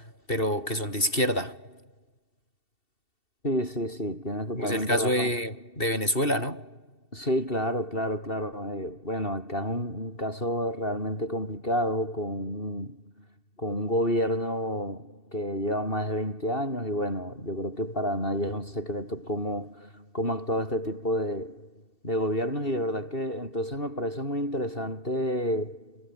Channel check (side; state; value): right; late; 2.7 ms